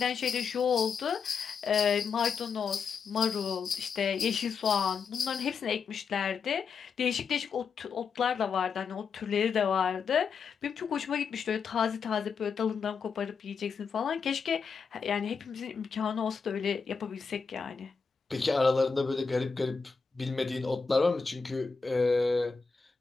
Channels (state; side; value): quieter; right; 5.6 dB